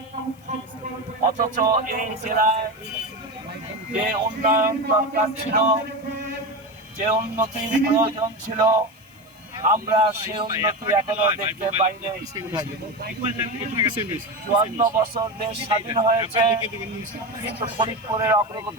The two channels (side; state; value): left; noise; hiss, 29 dB below the sound